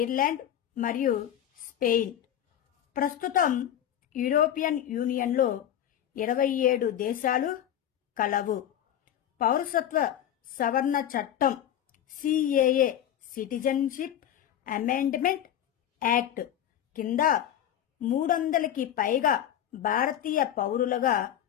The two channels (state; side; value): quieter; right; 10.7 dB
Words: మరియు స్పెయిన్. ప్రస్తుతం యూరోపియన్ యూనియన్లో 27 దేశాలు కలవు. పౌరసత్వ సవరణ చట్టం సిఏఏ సిటిజన్షిప్ అమెండ్మెంట్ యాక్ట్ కింద 300కి పైగా భారతీయ పౌరులుగా